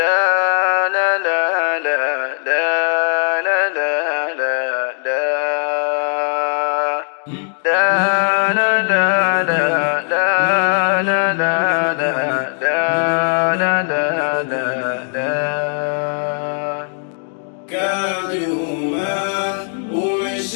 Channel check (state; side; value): silent; right; digital silence